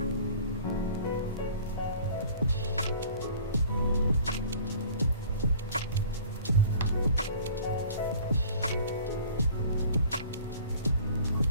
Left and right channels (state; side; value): inverted; both; correlation -0.48